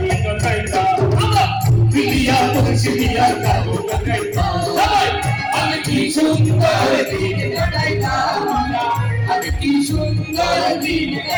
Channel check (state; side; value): identical; both; correlation 1.00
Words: কাইতা, বিলিয়া মুর্শিদিয়ার কাবু কাইতা, আমি কি সুন্দর দিন কাটাইতাম, আমি কি সুন্দর দিন